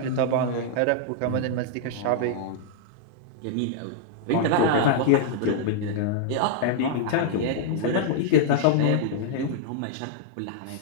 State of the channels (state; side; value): different; both; correlation -0.01